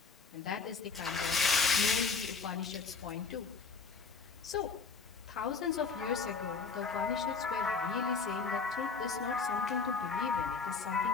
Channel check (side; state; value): right; quieter; 4.9 dB